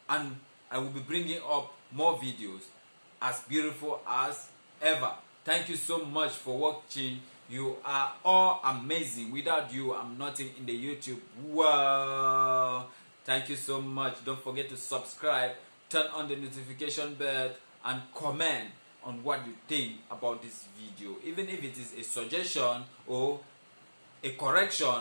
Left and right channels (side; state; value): both; inverted; correlation -1.00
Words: and I will be bringing up more videos as beautiful as ever. Thank you so much for watching. You are all amazing. Without you, I'm nothing in the YouTube world. Thank you so much. Don't forget to subscribe, turn on the notification bell, and comment on what you think about this video. Even if it is a suggestion or a